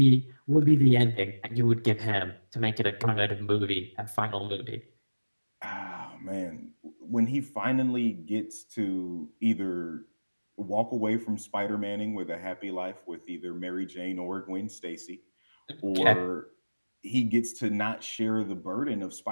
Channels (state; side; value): inverted; both; correlation -1.00